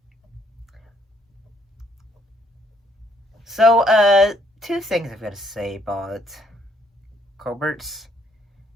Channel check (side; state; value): both; normal; correlation 0.68